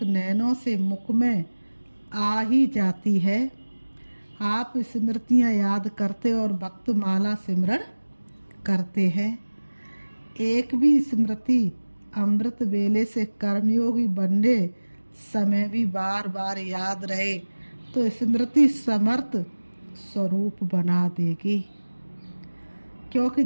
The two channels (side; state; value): both; inverted; correlation -1.00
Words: नैनों से मुख में आ ही जाती है। आप स्मृतियां याद करते और भक्त माला सिमरण करते हैं। एक भी स्मृति अमृत वेले से कर्मयोगी बनने समय भी बार बार याद रहे तो स्मृति समर्थ स्वरूप बना देगी, क्योंकि